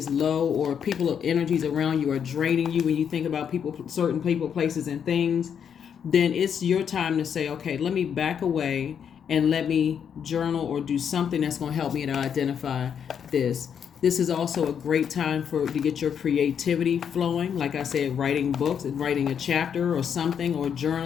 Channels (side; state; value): right; quieter; 7.9 dB